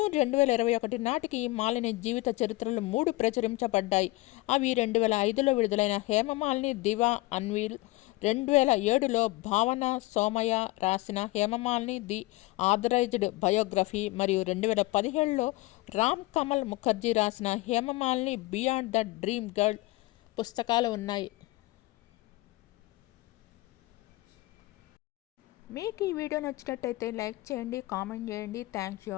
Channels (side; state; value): right; quieter; 20.6 dB